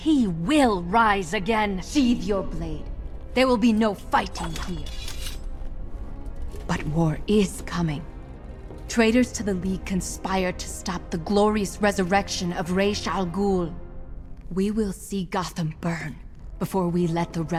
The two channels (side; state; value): both; identical; correlation 1.00